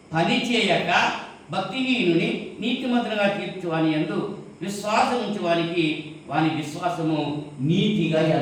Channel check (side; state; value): both; identical; correlation 1.00